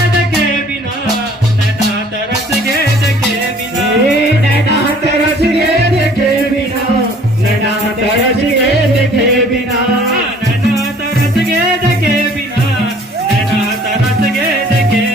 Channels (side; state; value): both; normal; correlation 0.54